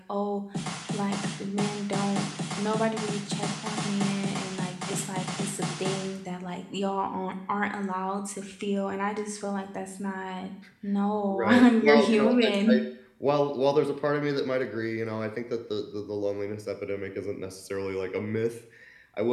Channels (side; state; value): both; identical; correlation 1.00